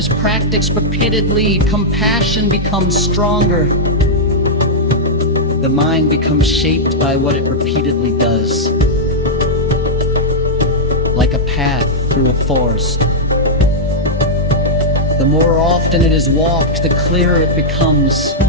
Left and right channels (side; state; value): both; normal; correlation -0.08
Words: practiced repeatedly, compassion becomes stronger. The mind becomes shaped by what it repeatedly does. Like a path through a forest. The more often it is walked, the clearer it becomes.